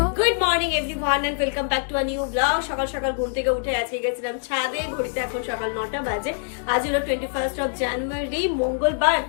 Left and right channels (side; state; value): right; silent; digital silence